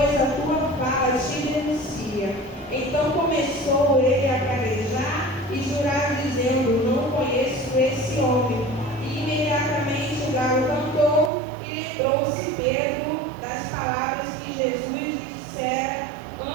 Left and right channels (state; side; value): drops out; left; at 11.3 s